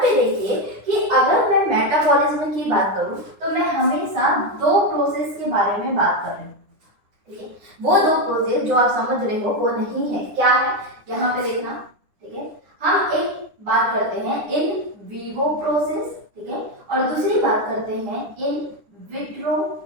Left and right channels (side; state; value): left; late; 9.8 ms